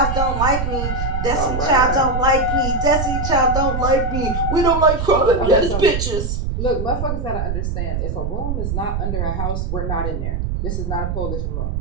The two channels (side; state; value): right; noise; rumble, 2 dB below the sound